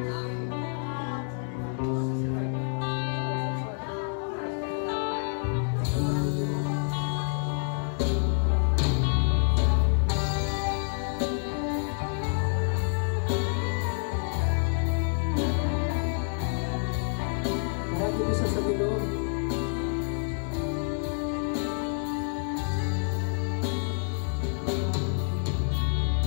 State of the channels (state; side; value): silent; right; 58 dB below the other